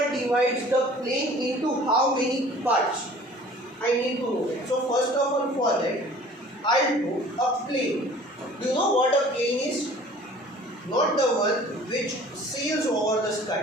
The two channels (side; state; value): both; normal; correlation 0.48